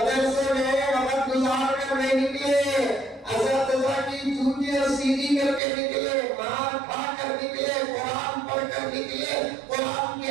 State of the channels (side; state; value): left; drops out; at 5.6 s